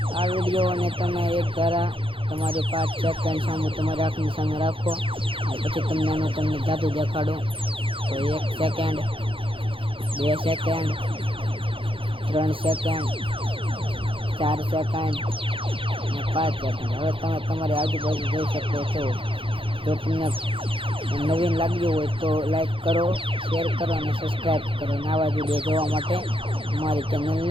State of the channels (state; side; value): late; left; 0.26 ms